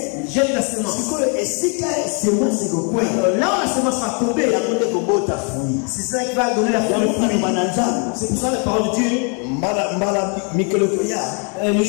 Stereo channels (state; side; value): quieter; right; 37.7 dB